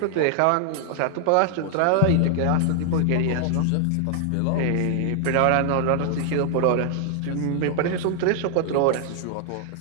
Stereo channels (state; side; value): different; both; correlation 0.00